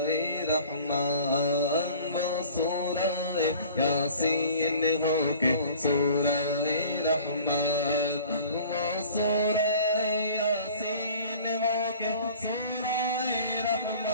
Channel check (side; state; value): both; inverted; correlation -0.47